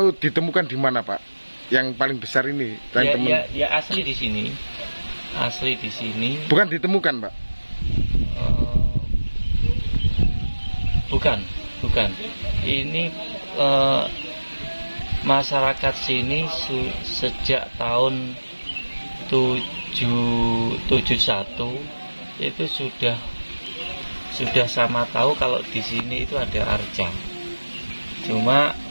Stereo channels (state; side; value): inverted; both; correlation -1.00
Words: ditemukan di mana Pak? Yang paling besar ini? Ya asli di sini. Asli di sini. Bukan ditemukan Pak? Bukan. Ini masyarakat sini sejak tahun 71 itu sudah sama tahu kalau di sini itu ada arca. Cuma